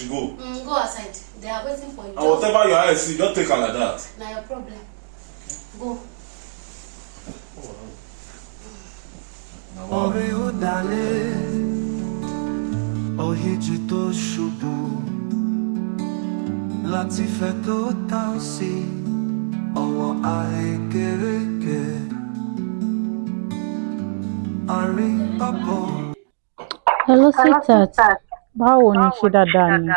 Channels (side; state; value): left; silent; digital silence